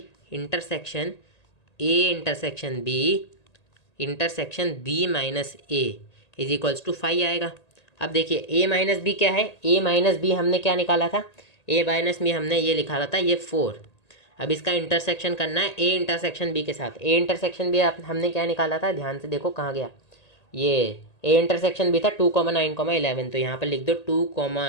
intersection A intersection B intersection B minus A is equals to phi आएगा। अब देखिए ए माइनस बी क्या है, ए माइनस बी हमने क्या निकाला था, ए माइनस बी हमने ये निकाला था ये 4। अब इसका इंटरसेक्शन करना है ए इंटरसेक्शन बी के साथ। ए इंटरसेक्शन बी हमने क्या निकाला था, ध्यान से देखो कहाँ गया, ये ए इंटरसेक्शन भी था 2,9,11, तो यहाँ पर लिख दो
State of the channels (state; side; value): late; right; 1.8 ms